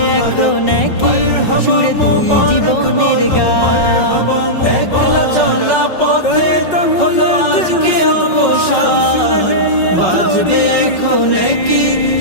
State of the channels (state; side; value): late; right; 5.4 ms